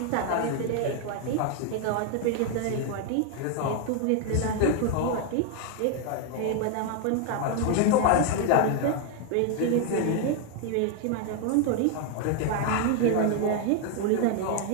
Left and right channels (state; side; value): different; both; correlation 0.00